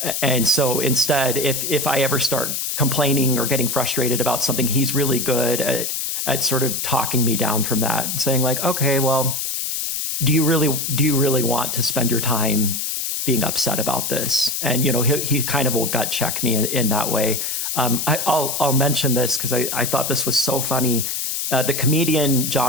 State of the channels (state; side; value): noise; left; hiss, 2 dB below the sound